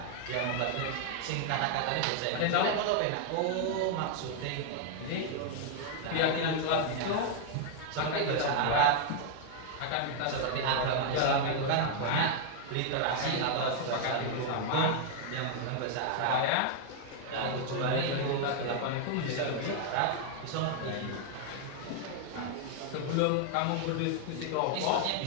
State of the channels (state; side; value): different; both; correlation 0.00